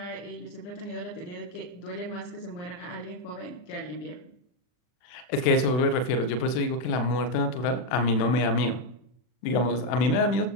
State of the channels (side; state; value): right; late; 40 ms